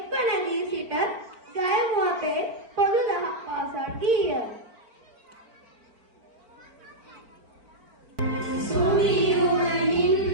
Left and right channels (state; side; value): late; left; 4.4 ms